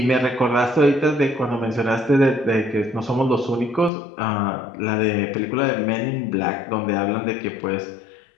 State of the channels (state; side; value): drops out; right; at 3.9 s